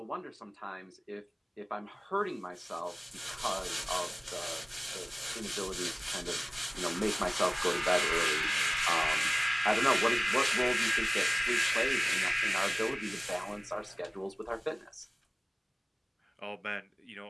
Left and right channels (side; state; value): both; identical; correlation 1.00